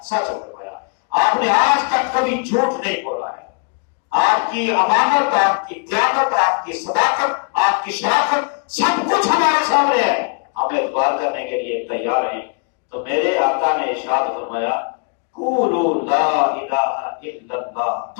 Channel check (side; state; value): right; quieter; 39.6 dB